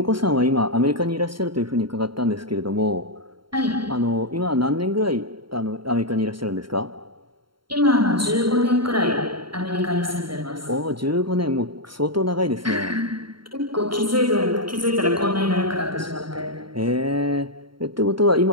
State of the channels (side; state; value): left; late; 0.73 ms